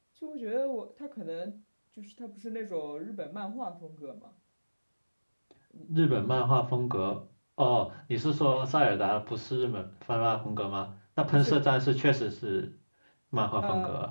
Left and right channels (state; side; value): inverted; both; correlation -1.00